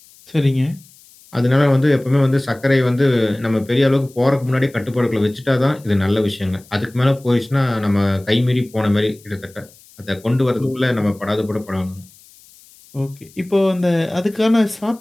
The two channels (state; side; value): noise; left; hiss, 26 dB below the sound